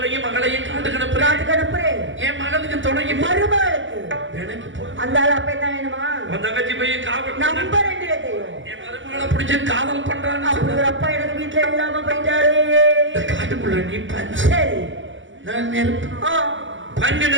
மகளையும் காட்டுக்கு அனுப்புறேன் காட்டுக்கு அனுப்புறேன் என் மகளுக்கு துணைக்கு மருமகளுக்கு எனக்கு போ அந்த ஆள் அப்ப என்ன வேணுமா உன் தங்கச்சி போய் காவல் நம்பர் 2 தெரியும் என் மருமகளை பிடிச்சு காதல் பண்றான்னு அப்படி ஒரு அப்பா எனக்கு வீட்டுல இல்லாம போயிட்டாரு இந்த காட்டுக்குள்ள நீ பஞ்சு சரி நான் நெருப்பு ஆ, பஞ்சு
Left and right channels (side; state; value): left; late; 0.55 ms